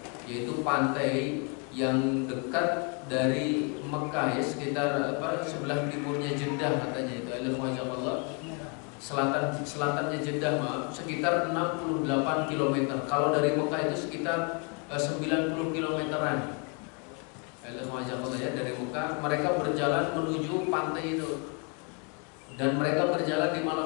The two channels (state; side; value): quieter; right; 35.8 dB